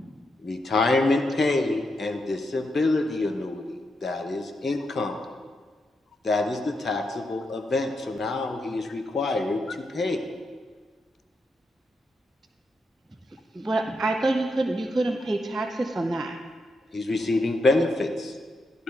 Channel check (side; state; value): both; normal; correlation 0.83